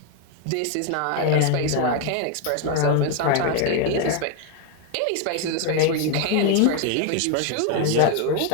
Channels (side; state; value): both; different; correlation 0.01